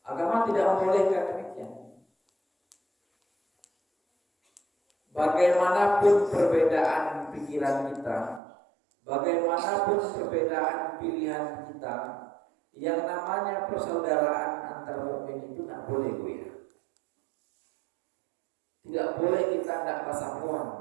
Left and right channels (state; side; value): drops out; left; at 8.4 s